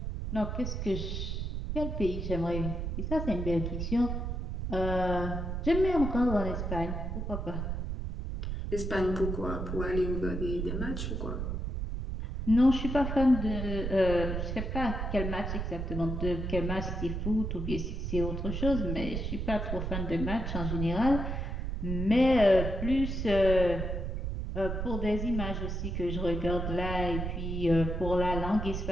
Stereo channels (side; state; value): right; noise; rumble, 3 dB below the sound